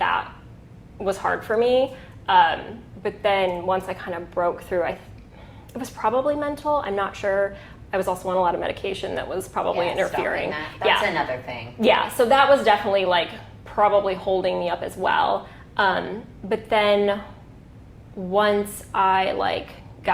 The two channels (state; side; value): identical; both; correlation 1.00